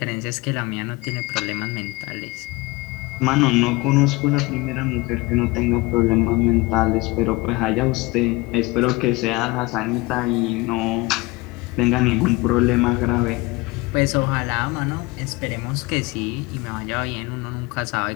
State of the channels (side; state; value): right; quieter; 22.4 dB